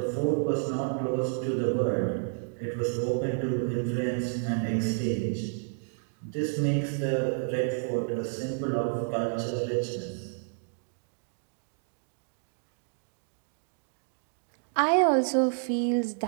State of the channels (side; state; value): left; silent; digital silence